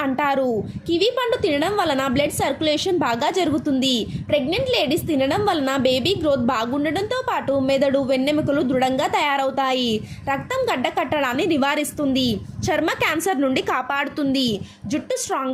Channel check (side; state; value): both; identical; correlation 1.00